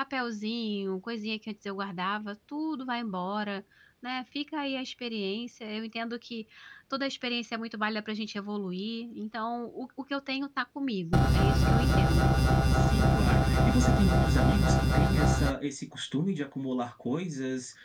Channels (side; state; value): both; identical; correlation 1.00